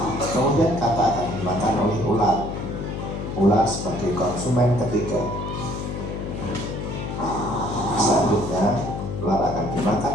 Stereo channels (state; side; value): noise; left; hum, 5 dB below the sound